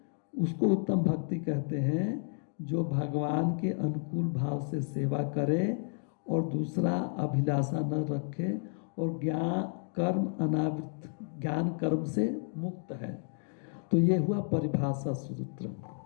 उसको उत्तम भक्ति कहते हैं, जो भगवान के अनुकूल भाव से सेवा करे और दूसरा अभिलाषा न रखे, और ज्ञान कर्म अनावृत, ज्ञान कर्म से मुक्त है। तो ये हुआ परिभाषा सूत्र।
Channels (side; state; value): right; silent; 57 dB below the other